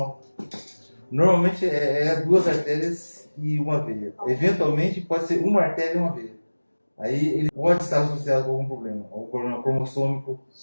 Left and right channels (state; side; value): inverted; both; correlation -1.00